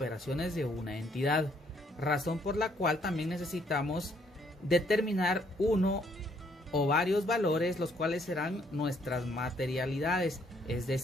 de una entidad, razón por la cual también necesitamos determinar uno o varios valores, los cuales serán nuestras materialidades, es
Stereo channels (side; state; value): both; normal; correlation 0.68